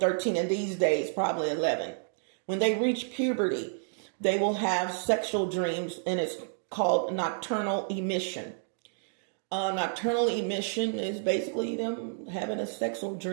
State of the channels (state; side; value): silent; left; digital silence